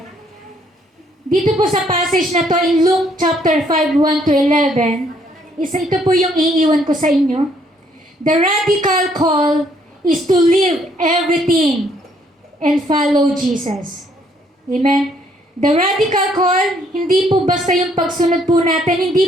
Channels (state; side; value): normal; both; correlation 0.67